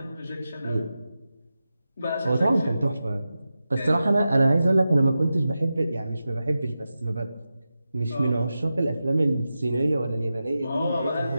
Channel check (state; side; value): inverted; both; correlation -0.92